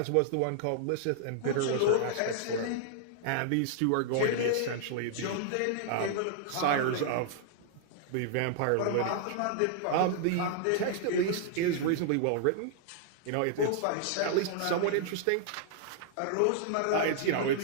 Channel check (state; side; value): different; both; correlation -0.01